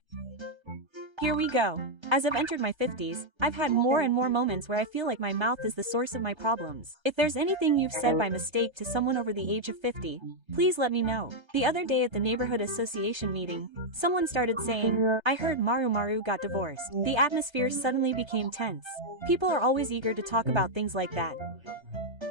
Here we go. As I've entered my 50s, I've had more and more moments where I feel like my mouth is the source of my problems. If there's anything you've said by mistake to someone over the age of 50, please let me know. The other day at the neighborhood association meeting, someone started saying, "I heard Maru got divorced." The atmosphere suddenly became tense. People are always eager to talk about things like that.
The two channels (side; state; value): left; late; 1.3 ms